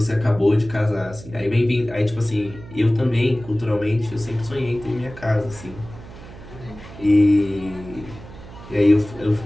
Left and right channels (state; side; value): noise; right; hum, 16 dB below the sound